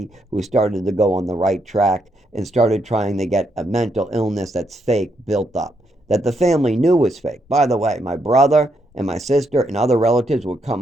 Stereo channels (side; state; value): both; normal; correlation 0.78